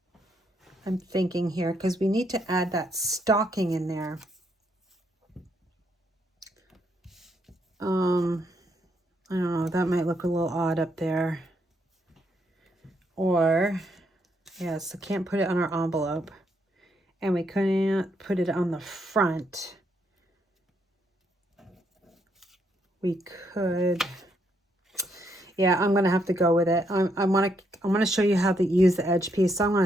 I'm thinking here because we need to add that stocking in there. I don't know, that might look a little odd up there. Or, yes, I can't put it on our envelope. And we couldn't put it on the front. We could, yeah, I'm gonna have to go with it. I want to show you how to use the edge piece, so I'm going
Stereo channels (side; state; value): both; normal; correlation 0.75